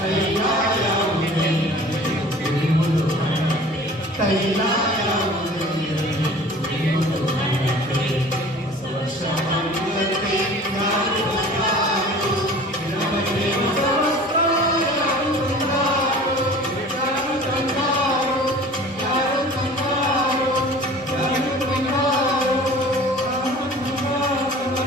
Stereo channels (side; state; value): both; normal; correlation 0.44